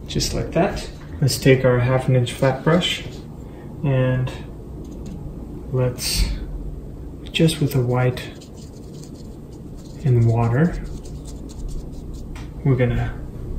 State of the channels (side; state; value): both; identical; correlation 1.00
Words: just like that. Let's take our 1/2 inch flat brush and let's, just with the white and water, we're going